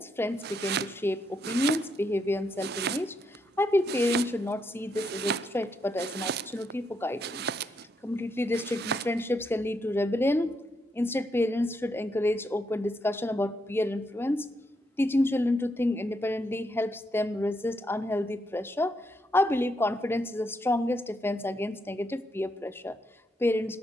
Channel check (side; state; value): both; normal; correlation 0.79